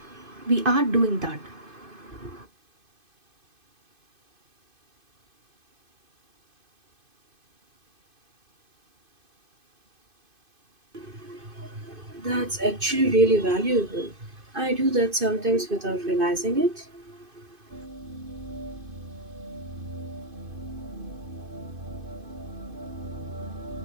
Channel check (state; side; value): late; left; 2.5 ms